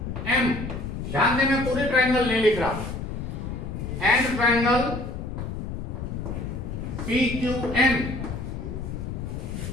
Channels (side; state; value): left; noise; rumble, 6 dB below the sound